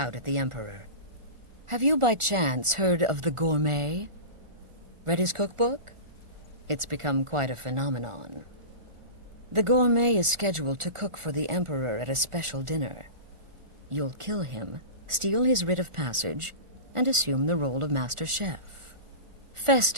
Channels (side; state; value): left; late; 1.4 ms